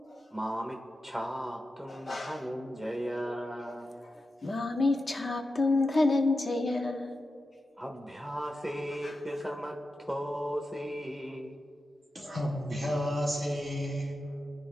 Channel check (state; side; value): normal; both; correlation 0.91